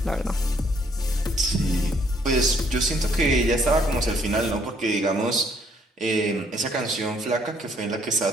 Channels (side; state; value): both; normal; correlation 0.67